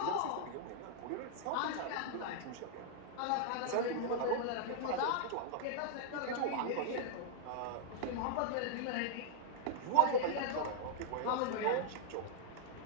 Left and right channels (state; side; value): different; both; correlation -0.01